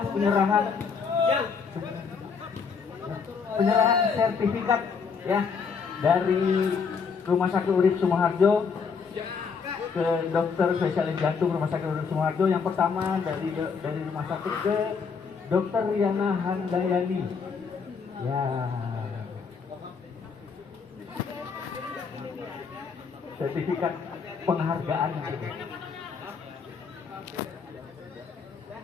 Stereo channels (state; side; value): quieter; right; 5.6 dB